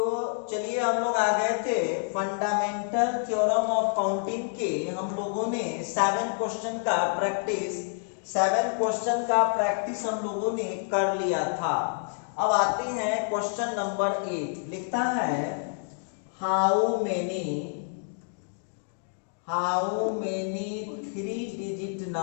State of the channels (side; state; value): right; silent; digital silence